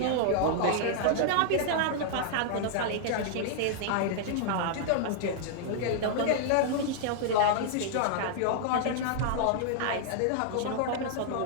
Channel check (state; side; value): different; both; correlation -0.01